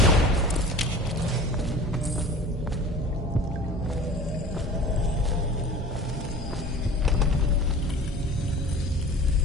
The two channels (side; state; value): both; normal; correlation 0.41